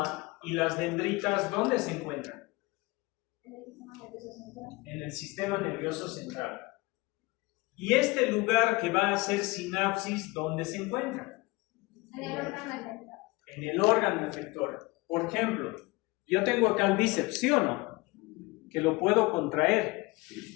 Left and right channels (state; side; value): quieter; right; 23.4 dB